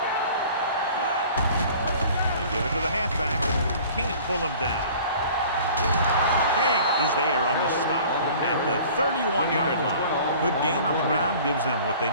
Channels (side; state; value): both; inverted; correlation -0.47